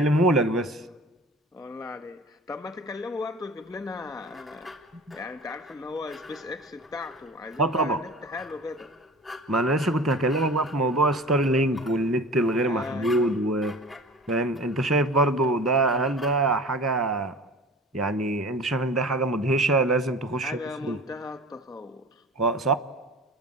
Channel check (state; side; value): normal; both; correlation 0.39